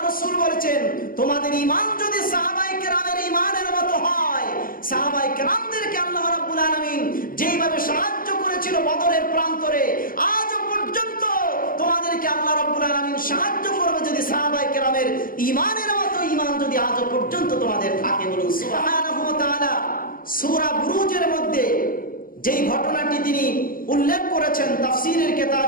রাসূল বলেছেন, তোমাদের ঈমান যদি সাহাবায়ে কেরামের ঈমানের মতো হয়, সাহাবায়ে কেরামদেরকে আল্লাহ রাব্বুল আলামিন যেইভাবে সাহায্য করেছিল বদরের প্রান্তরে, আজও পর্যন্ত তোমাদেরকে আল্লাহ রাব্বুল আলামিন সাহায্য করবে যদি সাহাবায়ে কেরামের ঈমানের মতো ঈমান যদি আজও পর্যন্ত তোমাদের থাকে। বলুন সুবহানাহু ওয়া তাআলা। সূরা বুরুজের মধ্যে যেই ঘটনাটি তিনি উল্লেখ করেছেন, তাফসীরের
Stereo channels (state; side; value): late; right; 0.41 ms